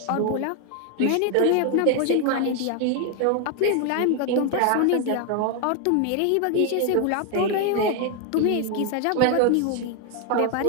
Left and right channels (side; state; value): both; different; correlation 0.01